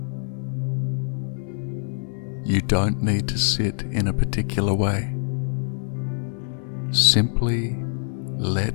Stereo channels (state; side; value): silent; right; 62 dB below the other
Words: You don't need to sit in a particular way. Simply